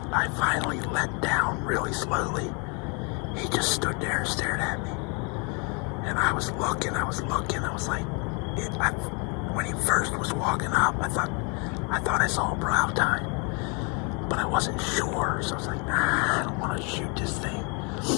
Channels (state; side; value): quieter; right; 33.9 dB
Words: I finally let down really slowly. He just stood there and stared at me. And I was looking, I was like, when he first was walking up, I thought I saw a brow tine, but I wasn't sure, so I was like, I don't want to shoot this thing.